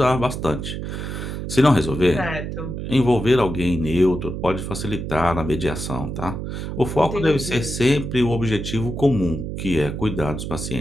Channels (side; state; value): right; noise; hum, 5 dB below the sound